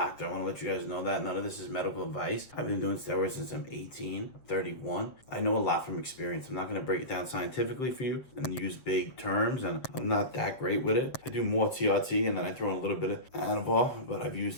I want to let you guys know that. None of this is medical advice. I've been doing steroids since I'm 18, 31. I know a lot from experience. I'm not gonna break it down scientifically for you and use big terms, and I'm not that great with it. I do more TRT and then I throw in a little bit of Anabol, but I've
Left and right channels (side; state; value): right; late; 7.7 ms